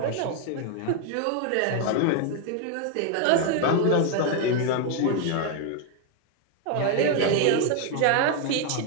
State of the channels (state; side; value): different; both; correlation 0.01